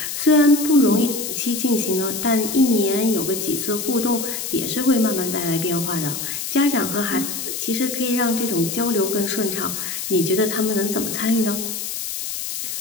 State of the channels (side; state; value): left; noise; hiss, 5 dB below the sound